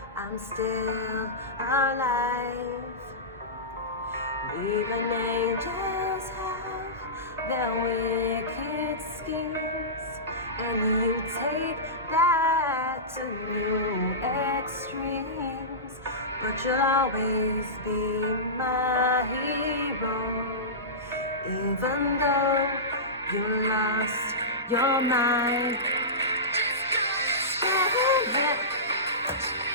I'm still alive. Even angels have their wicked schemes, and you take that to new extremes. But you'll always be my hero, even though you lost your mind.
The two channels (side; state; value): both; normal; correlation -0.19